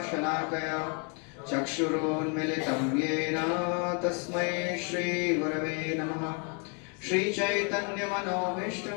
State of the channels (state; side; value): quieter; right; 35.8 dB